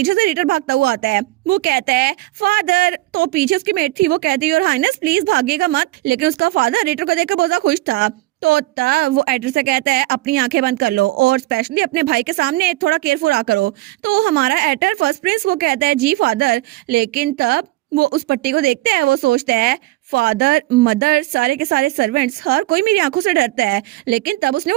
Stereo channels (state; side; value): quieter; left; 18.7 dB